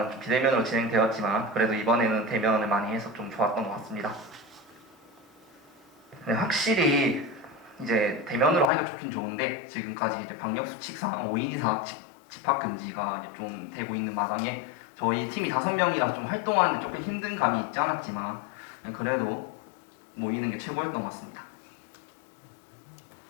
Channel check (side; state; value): right; drops out; at 8.7 s